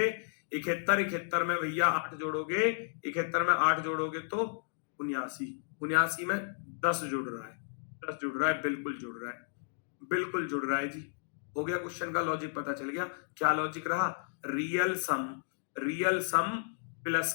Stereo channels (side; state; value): right; silent; digital silence